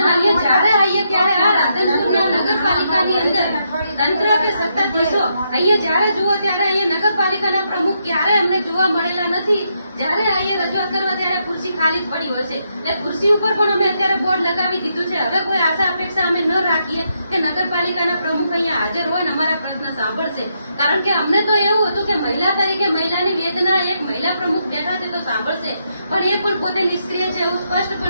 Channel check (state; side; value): inverted; both; correlation -0.79